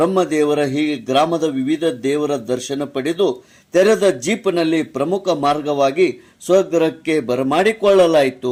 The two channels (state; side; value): identical; both; correlation 1.00